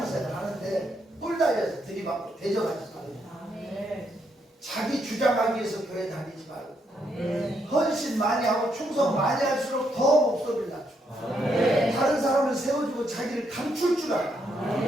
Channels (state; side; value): normal; both; correlation 0.77